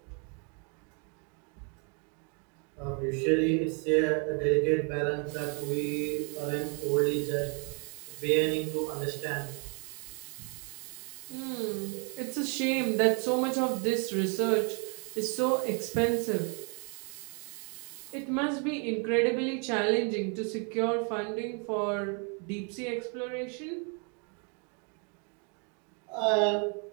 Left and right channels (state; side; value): quieter; left; 37.2 dB